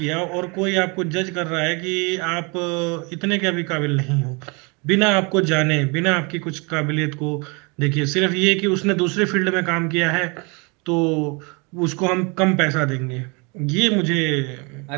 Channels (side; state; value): left; quieter; 30.2 dB